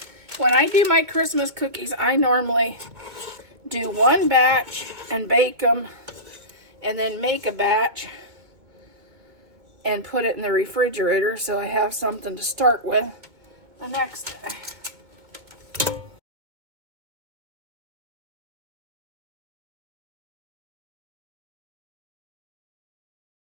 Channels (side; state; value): left; late; 2.2 ms